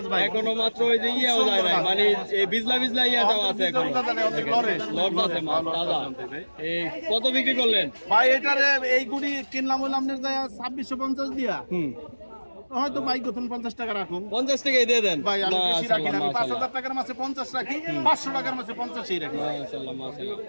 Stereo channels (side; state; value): both; inverted; correlation -1.00